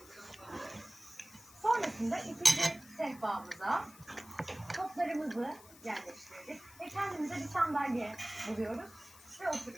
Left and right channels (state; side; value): noise; left; hiss, 21 dB below the sound